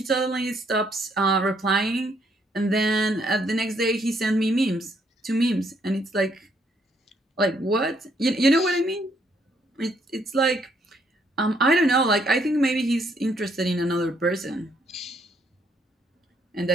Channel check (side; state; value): both; normal; correlation 0.71